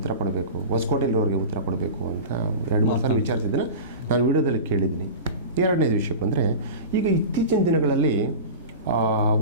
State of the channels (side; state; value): both; inverted; correlation -0.30